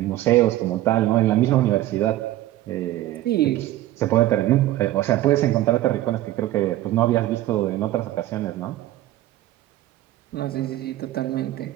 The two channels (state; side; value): quieter; left; 14.9 dB